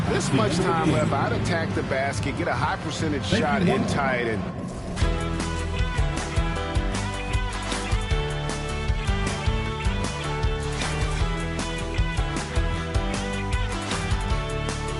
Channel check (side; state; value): both; identical; correlation 1.00